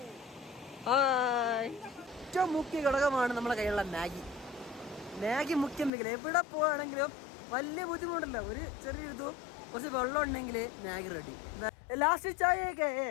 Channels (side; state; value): right; drops out; at 5.9 s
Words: ഏറ്റവും മുഖ്യ ഘടകമാണ് നമ്മുടെ കയ്യിലുള്ള മാഗി. മാഗി മുഖ്യം വെക്കില്ല. എവിടെ പോവാണെങ്കിലും വലിയ ബുദ്ധിമുട്ടില്ല. ഒരു ചെറിയൊരിതും കുറച്ച് വെള്ളം ഉണ്ടെങ്കിൽ മാഗി റെഡി. ലാസ്റ്റ് ചായയൊക്കെ